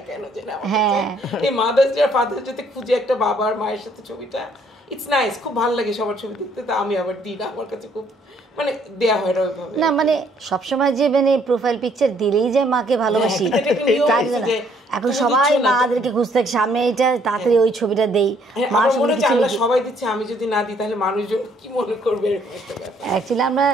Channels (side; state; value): both; normal; correlation 0.65